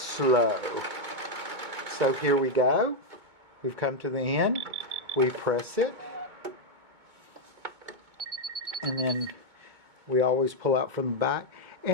So here we go. We've come to the end. We press it. And then we always pull out from the back.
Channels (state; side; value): late; left; 2.2 ms